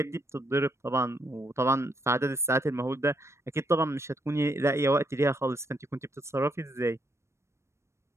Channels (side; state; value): left; late; 0.13 ms